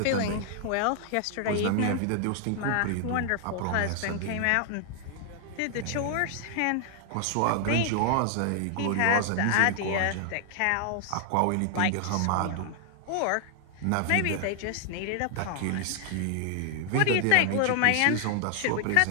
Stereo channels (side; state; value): both; different; correlation 0.00